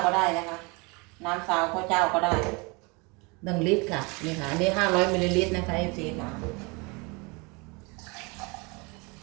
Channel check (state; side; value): quieter; left; 28.6 dB